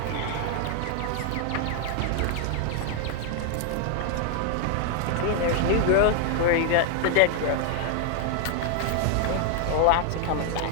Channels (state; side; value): different; both; correlation 0.00